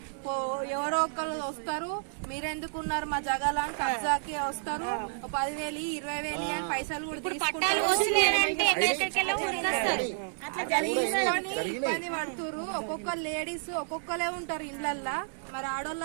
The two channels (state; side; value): silent; left; digital silence